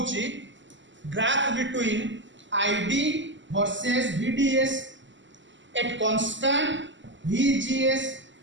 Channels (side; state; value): left; late; 0.54 ms